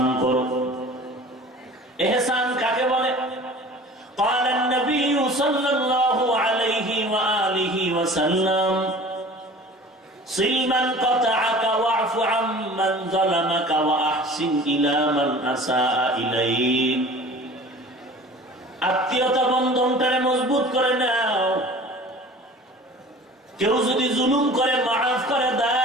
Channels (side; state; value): both; normal; correlation 0.43